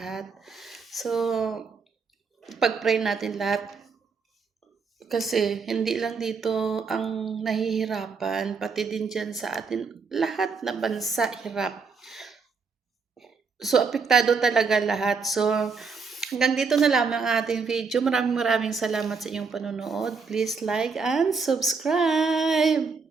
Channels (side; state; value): left; quieter; 5.0 dB